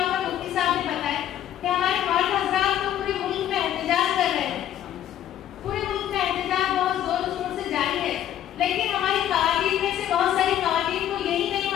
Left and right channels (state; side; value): quieter; right; 11.3 dB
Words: پر مفتی صاحب نے بتایا کہ ہمارے مرد حضرات تو پورے ملک میں احتجاج کر رہے ہیں, پورے ملک میں احتجاج بہت زور و شور سے جاری ہے, لیکن ہماری خواتین میں سے بہت ساری خواتین کو یہی نہیں